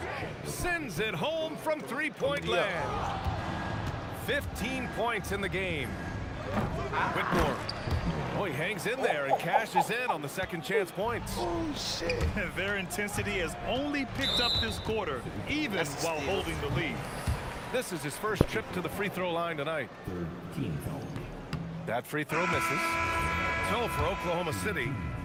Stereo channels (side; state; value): both; identical; correlation 1.00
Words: sends it home from three-point land. 15 points in the game. Whitmore. Oh, he hangs in there and cashes in on the second chance points. Oh, shit. Their intensity has only picked up this quarter, even while holding the lead. This is his first trip to the free throw line tonight. That free throw misses. So for Oklahoma City.